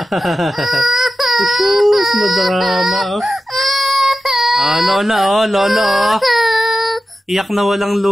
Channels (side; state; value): both; normal; correlation 0.94